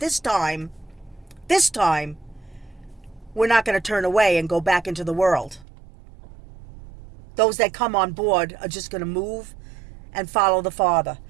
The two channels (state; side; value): drops out; left; at 5.7 s